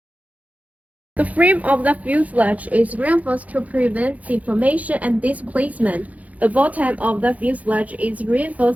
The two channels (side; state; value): left; late; 0.071 ms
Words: The frame of the fuselage is reinforced to prevent deformation and displacement. The bottom of the fuselage is